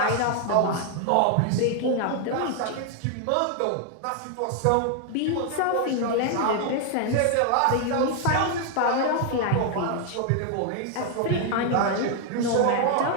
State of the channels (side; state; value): both; different; correlation 0.00